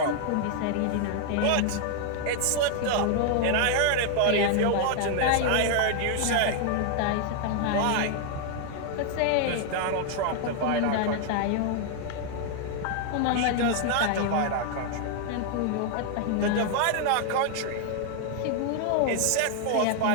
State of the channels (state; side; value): different; both; correlation 0.00